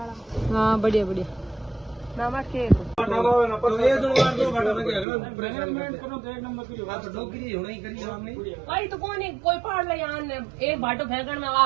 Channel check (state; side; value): drops out; left; at 5.1 s